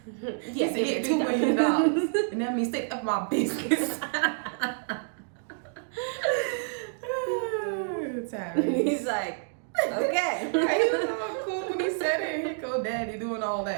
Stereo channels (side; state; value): left; silent; digital silence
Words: Yes, he said, $2 million. And that means stay up my business. Tyrese. He's like, okay. He was all cool when he said it. Here go daddy doing all